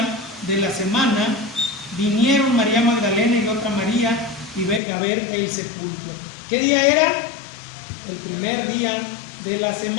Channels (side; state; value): right; drops out; at 4.8 s